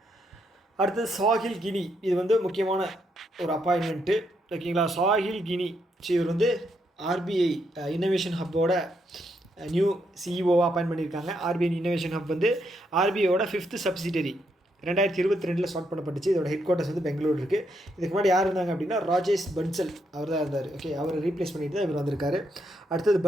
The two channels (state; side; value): normal; both; correlation 0.77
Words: அடுத்தது சாஹில் கினி, இது வந்து முக்கியமான ஒரு அப்பாயின்மெண்ட்டு. ஓகேங்களா, சாஹில் கினி இவர் வந்து RBI இன்னோவேஷன் ஹப்போட நியூ CEOவாக அப்பாயின்ட் பண்ணியிருக்காங்க. RBI இன்னோவேஷன் ஹப் வந்து RBIயோட 5th சப்சிடரி 2022 ஸ்டார்ட் பண்ணப்பட்டுச்சு. இதோட ஹெட் குவார்ட்டர்ஸ் வந்து பெங்களூர் இருக்குது. இதுக்கு முன்னாடி யார் இருந்தாங்க அப்படின்னா ராஜேஷ் பன்சல் அவர் தான் இருந்தார். ஓகே, அவரை ரீப்ளேஸ் பண்ணிட்டு தான் இவர் வந்திருக்காரு. அடுத்தது